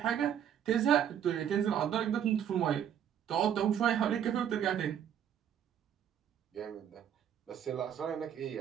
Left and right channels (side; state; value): left; quieter; 9.4 dB